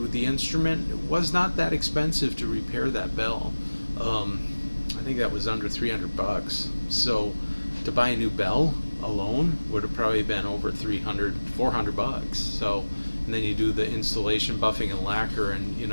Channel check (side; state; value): both; inverted; correlation -1.00